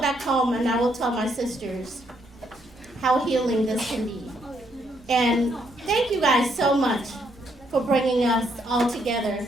back home and I will tell my sisters how healing this can be. And thank you guys so much for bringing us all together.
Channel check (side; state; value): both; normal; correlation 0.73